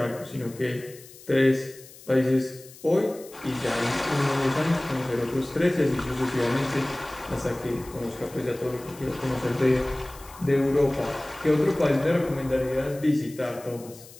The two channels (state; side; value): noise; left; hiss, 20 dB below the sound